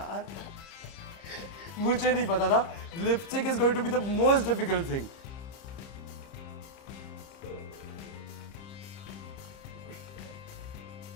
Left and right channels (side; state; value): right; late; 30 ms